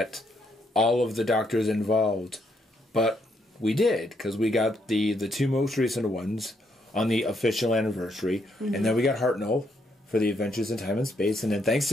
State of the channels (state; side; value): normal; both; correlation 0.75